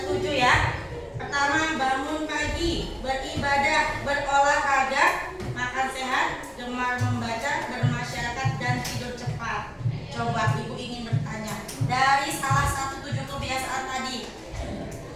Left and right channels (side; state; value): both; identical; correlation 1.00